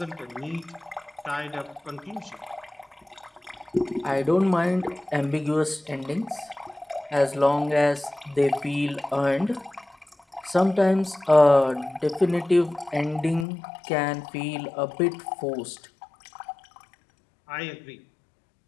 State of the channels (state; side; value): drops out; right; at 13.5 s